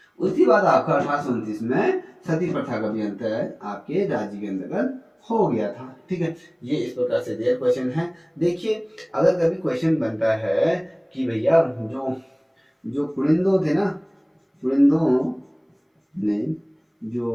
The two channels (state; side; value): identical; both; correlation 1.00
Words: आपका 1829 में सती प्रथा का भी अंत है आपके राज्य के अंतर्गत हो गया था। ठीक है, ये इस प्रकार से दिया क्वेश्चन है। देखिए अगर कभी क्वेश्चन बनता है कि भैया जो जो कुलिंदो थे ना, कुलिंदो ने जो